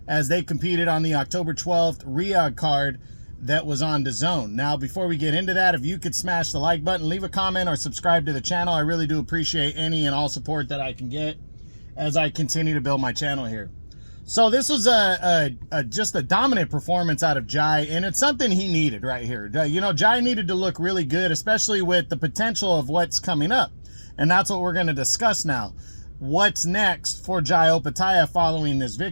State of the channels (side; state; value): both; inverted; correlation -1.00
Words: as they competed on the October 12th Riyadh card that was on DAZN. Now, before we get into that, if you could smash the like button, leave a comment, or subscribe to the channel. I really do appreciate any and all support that I can get as I continue to build my channel here. So this was just a dominant performance out of Jai, and it's something he needed right here. You know, Jai needed to look really good, especially with the potential of what's coming up. And that's what we're going to discuss now. What's next for Jai Opetaia following this